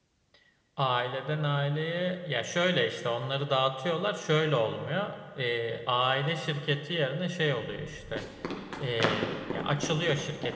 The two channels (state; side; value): identical; both; correlation 1.00